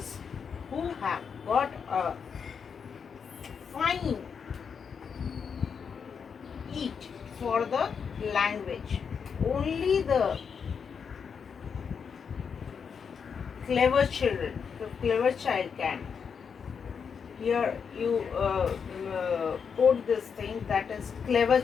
who have got a fine eat for the language. Only the clever children, the clever child can. Here you quote this thing, that is clever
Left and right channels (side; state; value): right; quieter; 6.4 dB